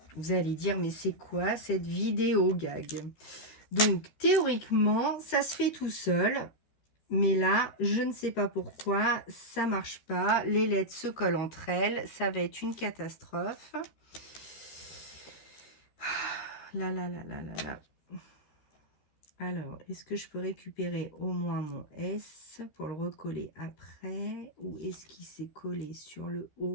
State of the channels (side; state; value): right; late; 13 ms